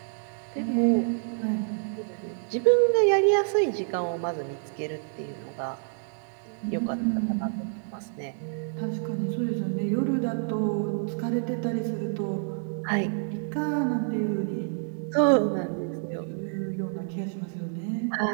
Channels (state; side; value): silent; left; 59 dB below the other